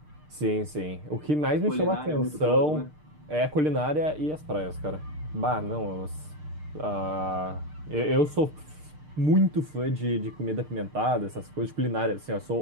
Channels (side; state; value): left; late; 6.6 ms